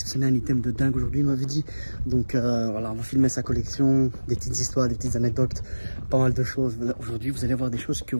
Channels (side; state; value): both; inverted; correlation -1.00